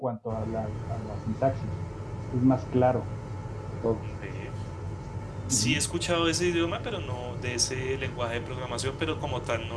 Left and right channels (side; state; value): both; identical; correlation 1.00